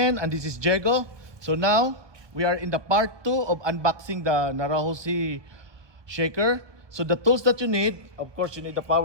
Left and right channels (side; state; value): left; late; 1.2 ms